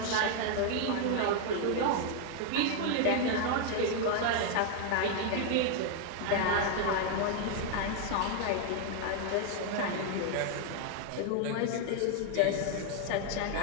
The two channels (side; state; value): both; different; correlation 0.00